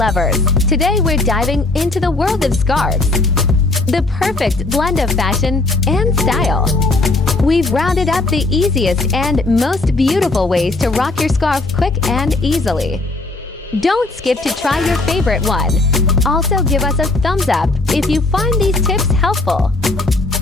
today we're diving into the world of scarves. The perfect blend of fashion and style. We've rounded up the easiest and most beautiful ways to rock your scarf quick and easily. Don't skip to try your favorite one. Also give us a thumbs up if you find these tips helpful.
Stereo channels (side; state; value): right; quieter; 3.1 dB